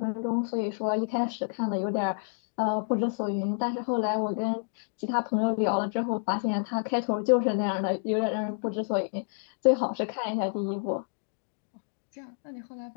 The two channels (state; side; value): silent; right; digital silence